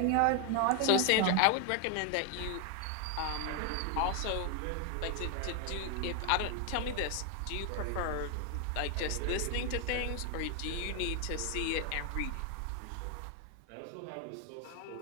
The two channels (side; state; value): both; different; correlation 0.01